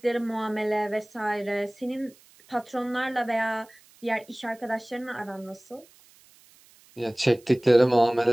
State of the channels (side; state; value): right; noise; hiss, 28 dB below the sound